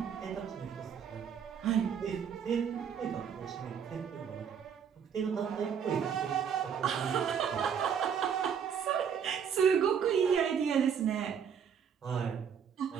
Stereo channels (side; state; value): left; quieter; 7.6 dB